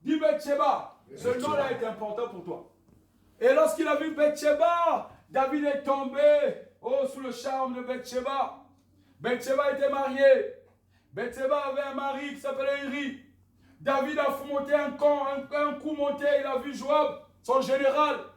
Dis Bathsheba, ce nom-là est important pour toi. Et lorsqu'il a vu Bathsheba, David est tombé sous le charme de Bathsheba. Bathsheba était mariée. Bathsheba avait un mari qui s'appelait Uri. David a monté un coup monté, il a vu Joab, son général.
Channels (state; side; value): identical; both; correlation 1.00